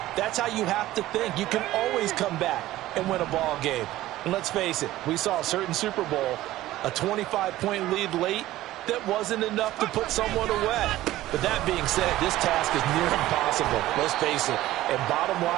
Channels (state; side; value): quieter; left; 15.6 dB